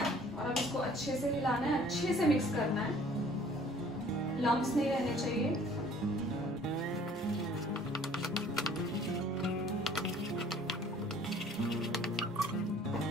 और अब इसको अच्छे से हिलाना है, अच्छे से मिक्स करना है, लम्प्स नहीं रहने चाहिए।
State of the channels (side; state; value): both; normal; correlation 0.55